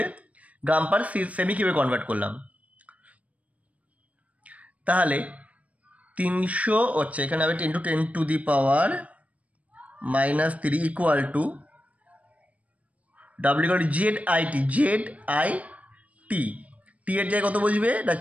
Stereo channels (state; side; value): late; left; 0.068 ms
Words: গ্রাম পার সেমি কিউবে কনভার্ট করলাম। তাহলে 300 হচ্ছে, এখানে হবে 10⁻³ equal to W equal to ZIT, টি এর জায়গায় কত বুঝবে না?